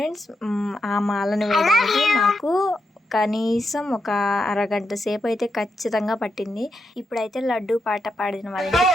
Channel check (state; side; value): normal; both; correlation 0.83